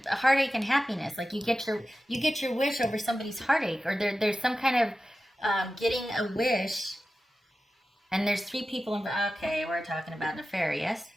a heartache and happiness. Like you get your wish over somebody's heartache, or there's some kind of getting a wish, and there's three people involved. Okay, we're talking about an affair, yes?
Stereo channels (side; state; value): both; normal; correlation 0.94